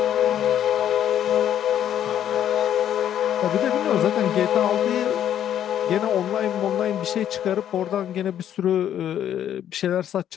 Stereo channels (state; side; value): quieter; right; 10.4 dB